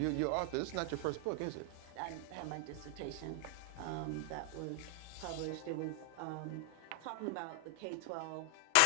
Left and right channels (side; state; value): both; different; correlation 0.00